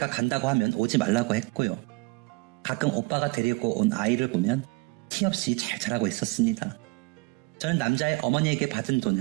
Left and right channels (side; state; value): left; quieter; 27.5 dB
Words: 간다고 하면 오지 말라고 했고요. 가끔 오빠가 데리고 온 아이를 보면 티 없이 잘 자라고 있었습니다. 저는 남자의 어머니에게 받은